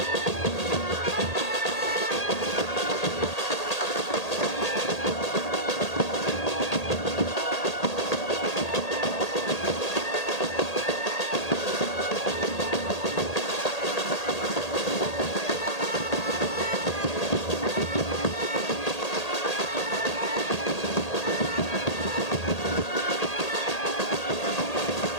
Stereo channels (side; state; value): right; late; 1.8 ms